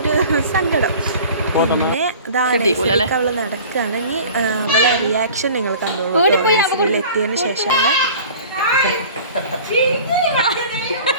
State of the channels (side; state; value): both; inverted; correlation -0.43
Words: സങ്കടം. പിന്നെ അവൾ നടക്കുകയാണെങ്കിൽ അവളെ റിയാക്ഷൻ നിങ്ങൾ കണ്ടോളൂ. നഴ്സറിയിൽ എത്തിയതിന് ശേഷമുള്ള